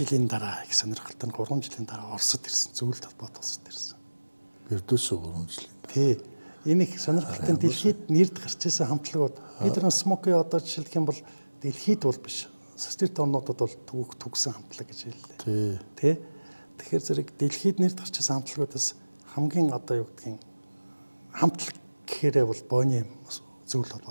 дараа их сонирхолтой нь 3 жилийн дараа Оросд ирсэн. Зөвлөлт холбоот Оросд ирсэн. Бердүсөө 3 жил. Тий. Энэ их сонирхолтой дэлхийд нэрд гарч ирсэн хамтлагууд бид нар Смоки одоо жишээлх юм бол дэлхийд бол биш. Социалист орнуудад бол төгсөн хамтлаг гэж хэллээ. Тий. Тэгэхээр зэрэг дэлхийд нэрд гарч ирсэн хамтлагуудаас хамгийн одоо юу гэдгийг хамтлаг гэхээрээ бол Бонием зөвлөлт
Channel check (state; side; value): inverted; both; correlation -1.00